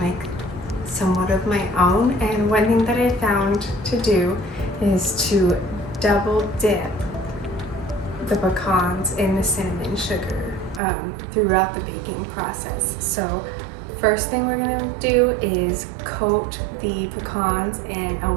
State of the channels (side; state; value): left; drops out; at 10.8 s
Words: somewhat of my own, and one thing that I found to do is to double dip the pecans in the cinnamon sugar throughout the baking process. So first thing we're going to do is coat the pecans in a